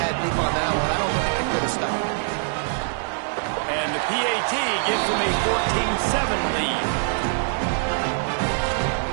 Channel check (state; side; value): silent; left; 63 dB below the other